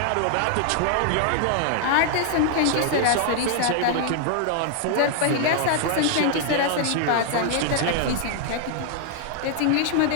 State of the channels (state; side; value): different; both; correlation 0.00